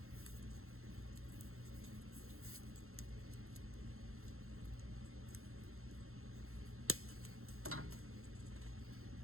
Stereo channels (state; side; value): late; left; 0.62 ms